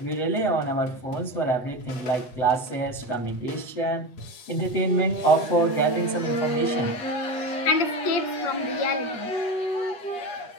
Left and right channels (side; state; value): right; late; 8.2 ms